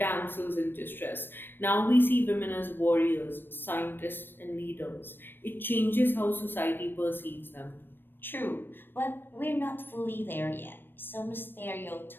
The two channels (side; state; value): right; late; 0.096 ms